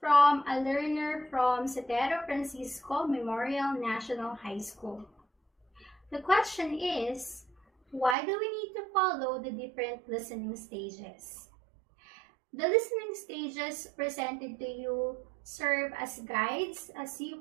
a learner from Setero Francisco Memorial National High School. The question is, why do we need to follow the different listening stages? The listening stages presented to you serve as guides as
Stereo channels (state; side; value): drops out; left; at 8.2 s